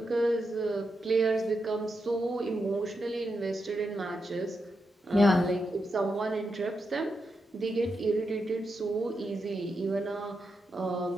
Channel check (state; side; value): normal; both; correlation 0.86